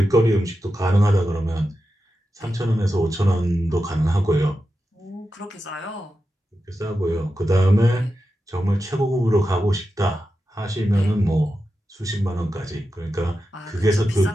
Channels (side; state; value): both; normal; correlation 0.90